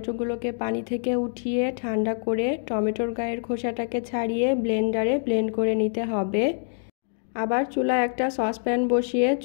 পানি থেকে উঠিয়ে ঠান্ডা করে টমেটোর গায়ের খোসাটাকে ছাড়িয়ে ব্লেন্ডারে ব্লেন্ড করে নিতে হবে। আবার চুলায় একটা সসপ্যান বসিয়ে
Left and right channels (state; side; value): silent; right; digital silence